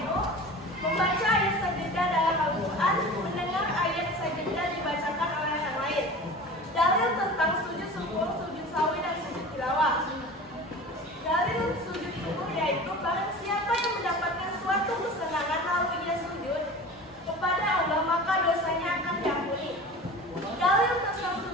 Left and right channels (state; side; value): normal; both; correlation 0.36